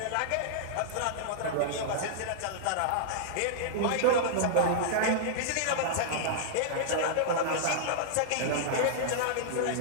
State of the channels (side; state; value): both; different; correlation -0.02